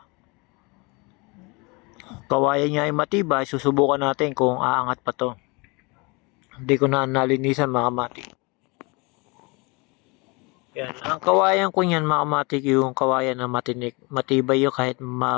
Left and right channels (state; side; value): quieter; right; 27.9 dB